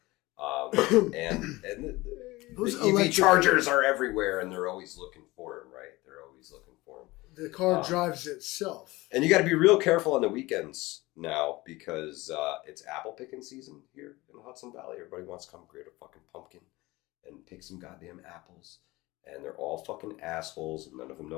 And those the EV chargers are everywhere, and they're always looking for them, right? They're always looking for them. The car drives itself. And you got to be real careful on the weekends now because it's apple picking season here in the Hudson Valley. Everybody wants to come grab a fucking pumpkin and pick some goddamn apples. And they're all fucking assholes. And none of them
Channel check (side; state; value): right; quieter; 20.7 dB